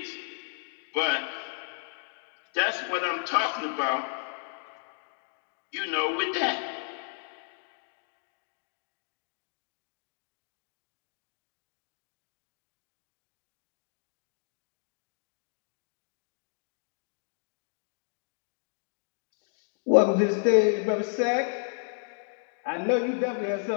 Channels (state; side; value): silent; right; digital silence